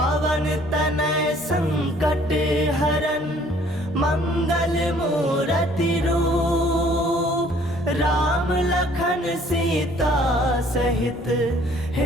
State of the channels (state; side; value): normal; both; correlation 0.58